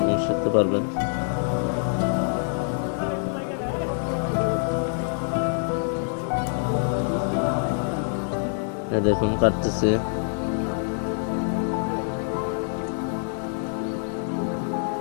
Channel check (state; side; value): silent; right; 57 dB below the other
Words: এবং শিখতে পারবেন। দেখুন কাটতেছি,